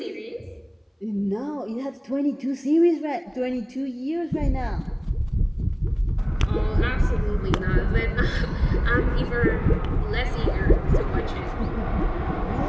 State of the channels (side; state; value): both; identical; correlation 1.00